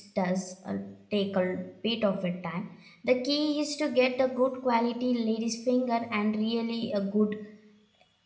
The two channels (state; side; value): identical; both; correlation 1.00